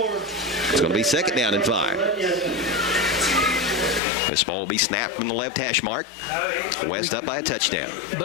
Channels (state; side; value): drops out; right; at 4.0 s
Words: going to be second down and 5. This ball will be snapped from the left hash mark. West up by a touchdown.